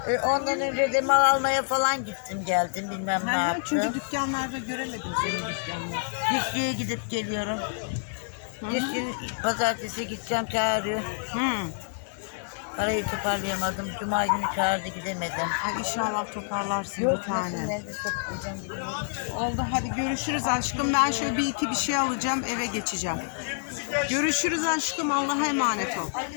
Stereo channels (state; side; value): silent; right; digital silence